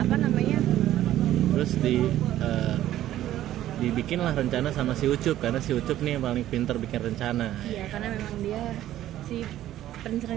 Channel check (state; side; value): quieter; left; 13.1 dB